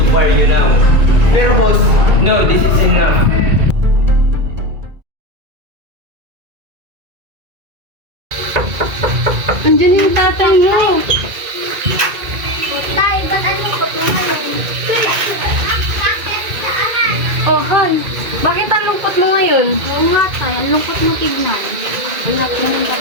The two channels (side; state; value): left; late; 2.3 ms